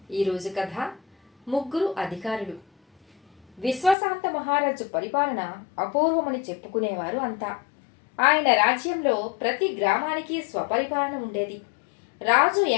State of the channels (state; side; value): drops out; right; at 4.0 s